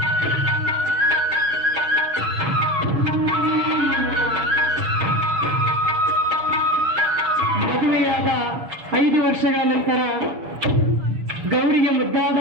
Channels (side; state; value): left; late; 6.7 ms